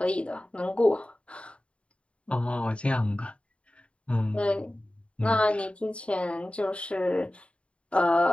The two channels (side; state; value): right; late; 0.061 ms